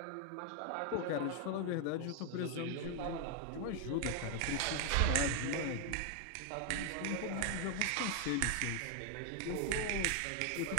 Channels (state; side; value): different; both; correlation 0.00